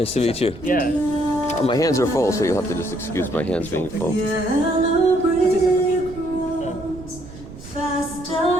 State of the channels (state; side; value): noise; right; rumble, 16 dB below the sound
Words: to meet you. Yeah. My hands are full, so you'll have to just excuse my hands being full. Yellow brick roads, fast